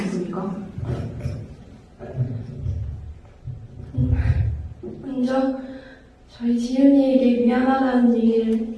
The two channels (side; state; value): both; identical; correlation 1.00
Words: 있습니까? 먼저 저희 지은이에게 미안하다는